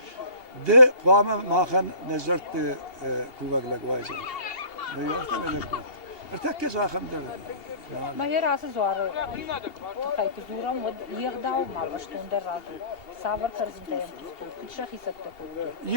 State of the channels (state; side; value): late; right; 2.8 ms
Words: ده قامة ماخن نزرت كوفق لق وايزن ما يوقتنا لك ارتكز آخم در ما هي راس زوار خايك زورم ود يغداو ما بشتون در راتو سافر كرزن تايم كل شخص يسكتو